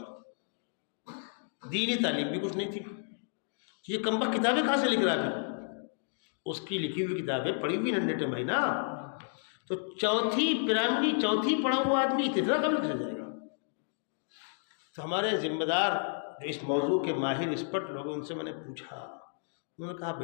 دینی تعلیم بھی کچھ نہیں تھی۔ یہ کمبخت کتابیں کہاں سے لکھ رہا ہے؟ اس کی لکھی ہوئی کتابیں پڑھی ہوئی ننڈے ٹمائی نا، تو چوتھی پیراملی چوتھی پڑھا ہوا آدمی اتنا کم لکھ جائے گا۔ تو ہمارے ذمہ دار جو اس موضوع کے ماہر ایکسپرٹ لوگ، ان سے میں نے پوچھا، انہوں نے کہا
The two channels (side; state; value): right; silent; digital silence